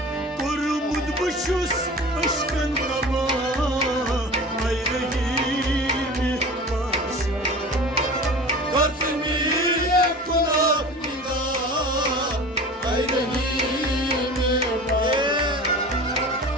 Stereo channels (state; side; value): normal; both; correlation 0.37